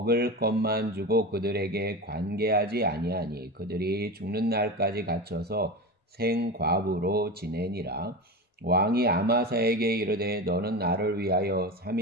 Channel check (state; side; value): normal; both; correlation 0.25